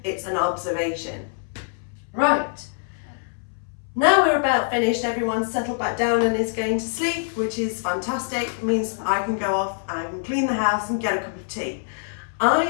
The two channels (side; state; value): right; silent; 61 dB below the other